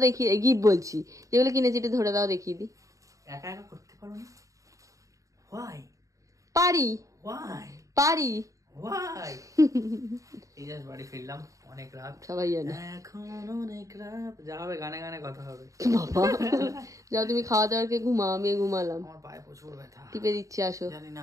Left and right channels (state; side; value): late; left; 0.16 ms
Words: দেখিয়ে, গিফট বলছি যেগুলো কিনেছি একটু ধরে দাও, দেখিয়ে দিই। একা একা করতে পারো না? হোয়াই? পারি, পারি। হোয়াই? এই জাস্ট বাড়ি ফিরলাম, অনেক রাত, সবাই জানে এখন অনেক রাত। যা হবে গানে গানে কথা হবে। বাবা যাও তুমি খাওয়া দাওয়াকে ঘুমাও, আমি ঘুমালাম। আমার পায়ে প্রচুর ব্যথা, টিপে দিচ্ছি, আসো। জানি না